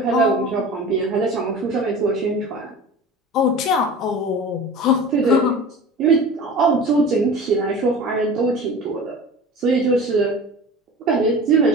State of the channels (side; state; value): both; normal; correlation 0.37